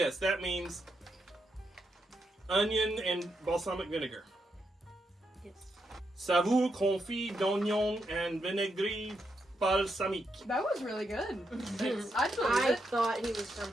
that means onion and balsamic vinegar. Yes. Saveur confit d'oignon and vinaigre balsamique. That was really good. I I thought he was from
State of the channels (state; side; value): normal; both; correlation 0.82